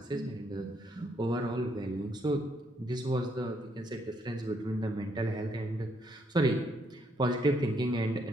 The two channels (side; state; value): both; normal; correlation 0.73